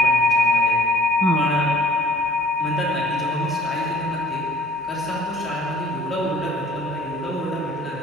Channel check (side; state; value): both; normal; correlation 0.52